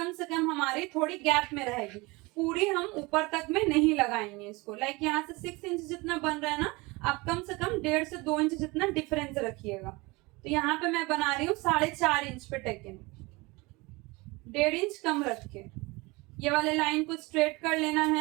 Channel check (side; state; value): left; quieter; 24.2 dB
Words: से कम हमारी थोड़ी गैप में रहेगी, पूरी हम ऊपर तक में नहीं लगाएंगे इसको। लाइक यहाँ से 6 इंच जितना बन रहा है ना, आप कम से कम 1.5 से 2 इंच जितना डिफरेंस रखिएगा। तो यहाँ पे मैं बना रही हूँ 4.5 इंच पे टेकन, 1.5 इंच कम रख के ये वाले लाइन को स्ट्रेट कर लेना